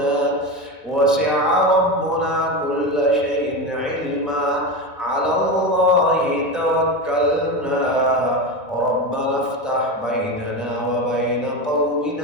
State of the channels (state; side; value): normal; both; correlation 0.19